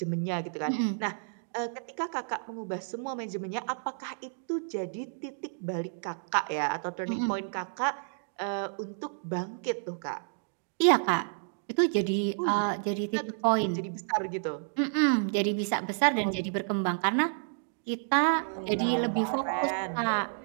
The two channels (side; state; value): left; silent; digital silence